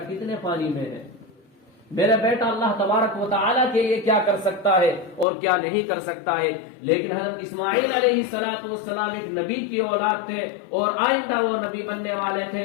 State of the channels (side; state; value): right; drops out; at 5.2 s